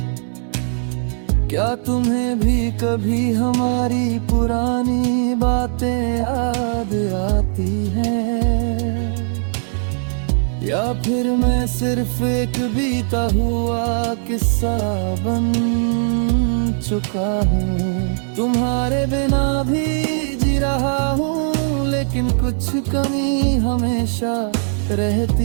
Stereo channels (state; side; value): silent; left; 66 dB below the other